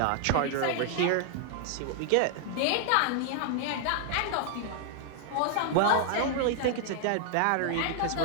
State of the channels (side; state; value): both; different; correlation 0.00